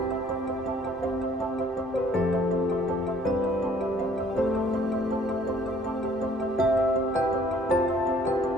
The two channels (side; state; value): both; normal; correlation 0.58